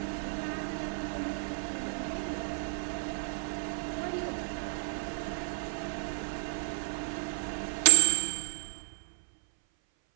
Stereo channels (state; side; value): silent; left; 57 dB below the other